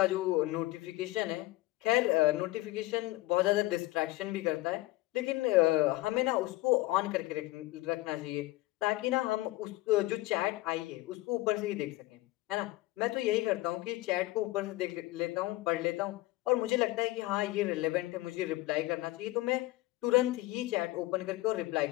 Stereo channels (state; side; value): quieter; right; 19.1 dB